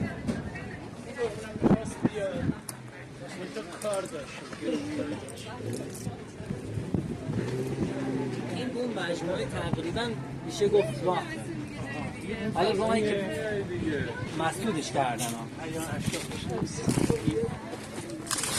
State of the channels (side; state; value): both; identical; correlation 1.00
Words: کار داشت. این اون مجموعه تقریبا میشه گفت راه حالا راهی که مسدودش کردن